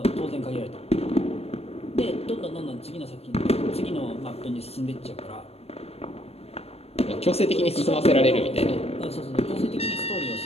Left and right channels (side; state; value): right; late; 0.29 ms